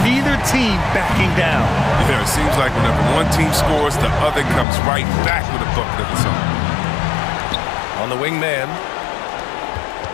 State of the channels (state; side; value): drops out; right; at 4.7 s